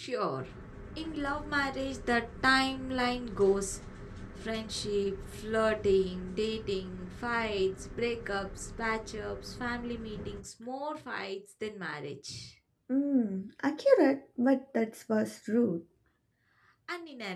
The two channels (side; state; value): both; identical; correlation 1.00